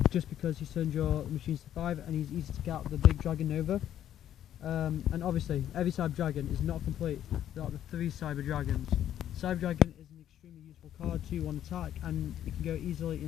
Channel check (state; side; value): quieter; right; 11.0 dB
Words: Just because he turns your machines to 5 and he's easy to get out the big Dragon Nova. And obviously every Cyber Dragon is not complete without the 3 Cyber Dragons. Cyber Dragon is an extremely useful card, 2-1 attack, and it can go easily